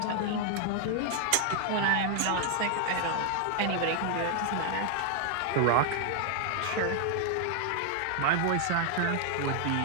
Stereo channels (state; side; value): different; both; correlation 0.00